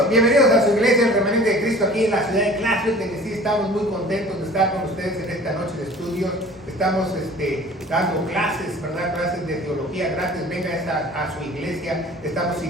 a su iglesia, el Remanente de Cristo, aquí en la ciudad de Clarksville, de que sí estamos muy contentos de estar con ustedes en esta noche de estudios. Estamos dando clases, ¿verdad? Clases de teología gratis. Venga a su iglesia. Estamos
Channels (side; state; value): both; normal; correlation 0.46